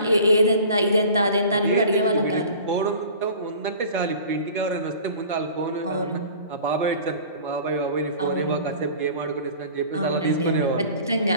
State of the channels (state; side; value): inverted; both; correlation -0.43